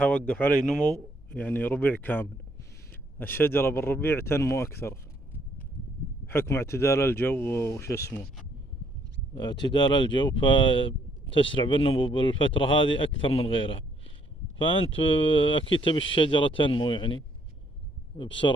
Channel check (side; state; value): both; normal; correlation 0.68